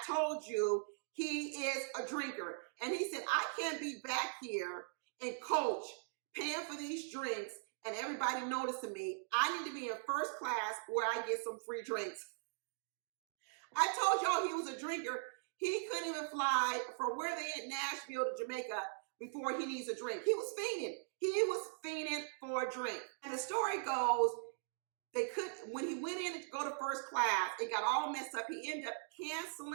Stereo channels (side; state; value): left; silent; digital silence